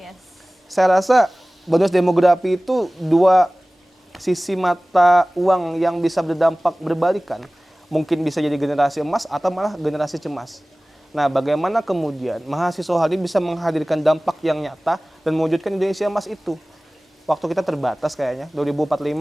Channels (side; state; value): both; normal; correlation 0.98